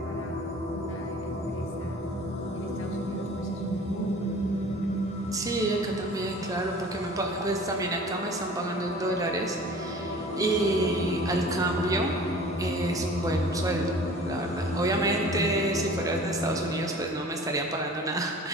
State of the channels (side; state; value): both; normal; correlation 0.45